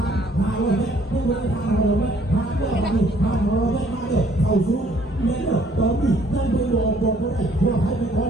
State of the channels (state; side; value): normal; both; correlation 0.61